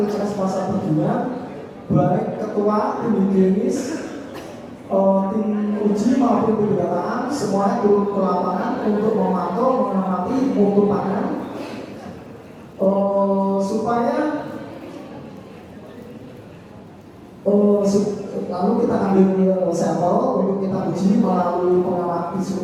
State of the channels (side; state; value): both; identical; correlation 1.00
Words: pasar Bedungan, baik ketua, tim higienis, tim uji maupun tim pendataan, semuanya turun ke lapangan untuk memantau, mengamati mutu pangan, supaya lalu kita ambil sampel untuk kita uji melalui